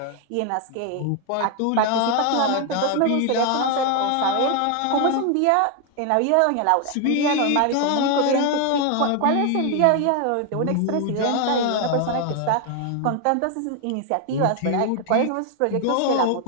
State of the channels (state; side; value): different; both; correlation 0.01